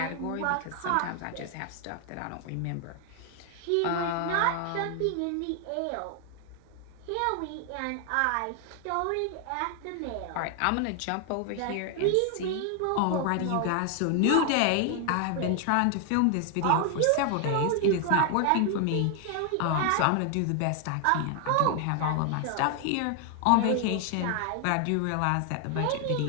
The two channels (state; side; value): different; both; correlation 0.00